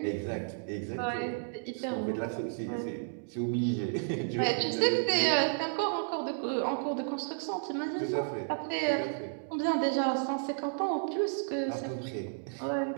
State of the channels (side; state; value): left; silent; digital silence